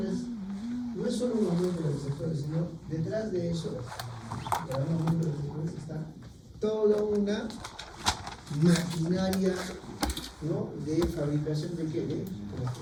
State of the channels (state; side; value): identical; both; correlation 1.00